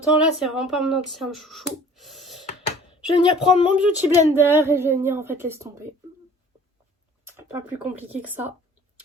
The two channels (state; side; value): normal; both; correlation 0.49